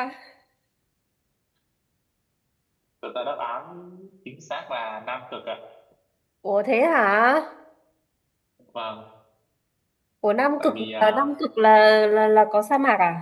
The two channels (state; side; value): identical; both; correlation 1.00